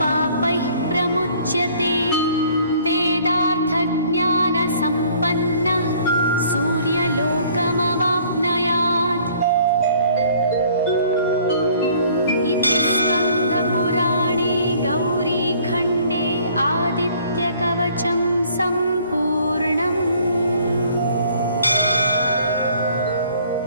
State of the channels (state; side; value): inverted; both; correlation -0.57